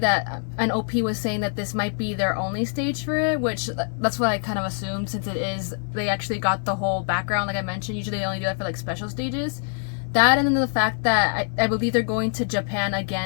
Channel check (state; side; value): silent; right; 62 dB below the other